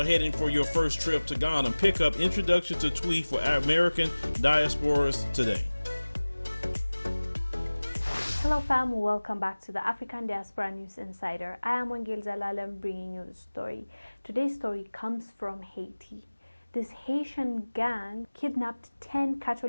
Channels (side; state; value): both; inverted; correlation -1.00